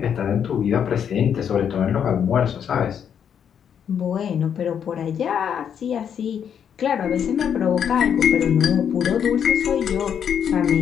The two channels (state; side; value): quieter; right; 8.2 dB